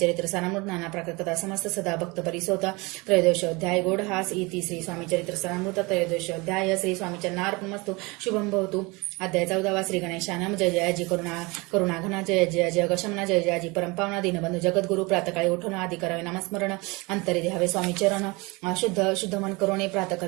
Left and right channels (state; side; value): quieter; left; 25.5 dB